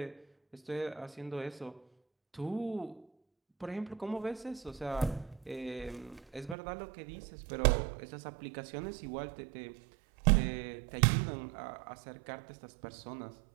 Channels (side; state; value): left; drops out; at 6.6 s